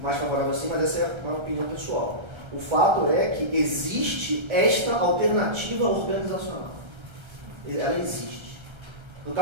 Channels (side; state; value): left; late; 1.3 ms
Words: mais favorável assim, mas essa é uma opinião pessoal. O fato é que existe esta alternativa organizacional. Ela existe. No